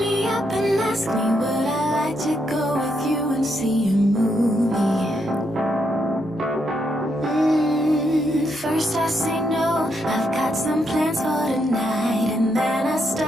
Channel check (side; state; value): both; normal; correlation 0.78